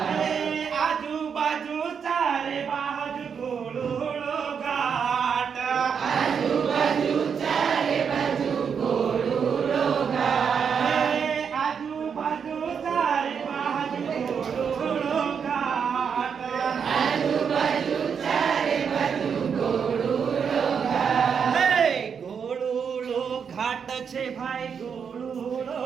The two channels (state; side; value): quieter; left; 6.8 dB